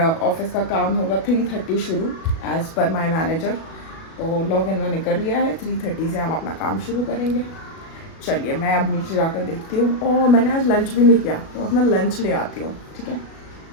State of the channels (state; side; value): late; right; 37 ms